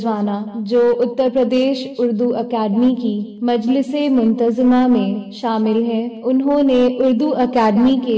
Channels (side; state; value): both; identical; correlation 1.00